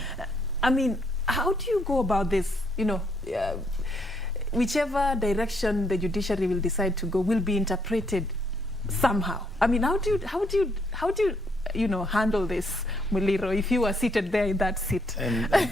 I mean, how do you go about this? You know, whichever direction the judiciary will decide to go will be interpreted somehow. I mean, how do you know, handle this, Muliro, if you were seated there in that seat?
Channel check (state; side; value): normal; both; correlation 0.72